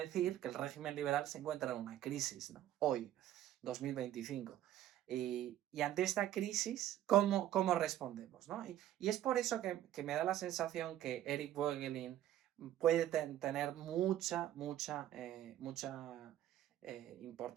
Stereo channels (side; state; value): left; quieter; 12.5 dB